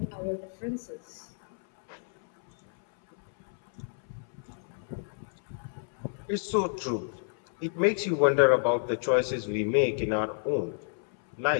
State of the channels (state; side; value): silent; right; 58 dB below the other